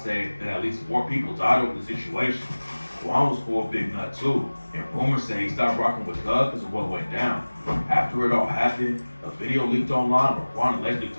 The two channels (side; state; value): both; inverted; correlation -1.00